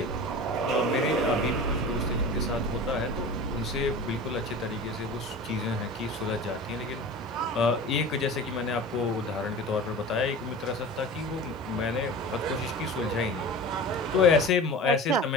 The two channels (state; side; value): normal; both; correlation 0.35